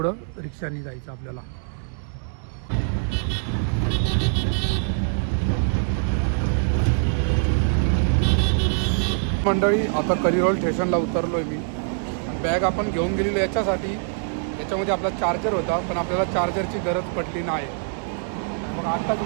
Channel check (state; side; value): silent; left; digital silence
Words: रिक्षाने जायचं आपल्याला. मंडळी आता कलिरोल स्टेशनला उतरलो आहे मी. बॅग आपण घेऊन गेलेलो याच्यासाठी, याच्यामध्ये आपला चार्जर होता पण आपल्याला चार्जरची गरज पडली नाही. मग आत्ताच